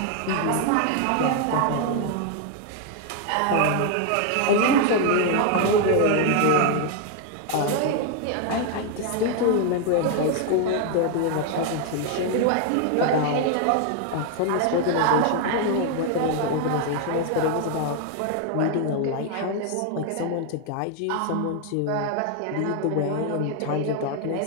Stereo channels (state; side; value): different; both; correlation 0.01